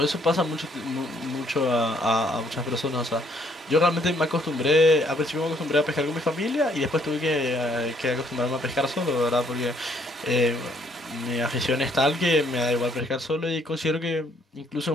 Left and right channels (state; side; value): normal; both; correlation 0.66